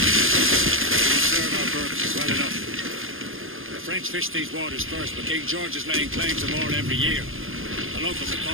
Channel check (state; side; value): late; left; 0.59 ms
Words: serve our purposes well enough. The French fish these waters first, but King George is laying claim to more every year. The locals are